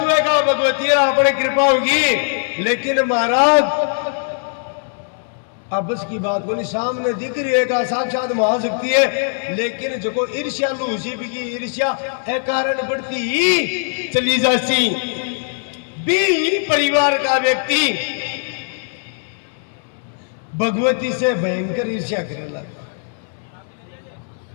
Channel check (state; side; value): silent; right; 64 dB below the other